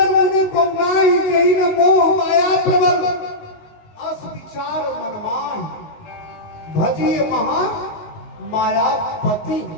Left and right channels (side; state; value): right; late; 19 ms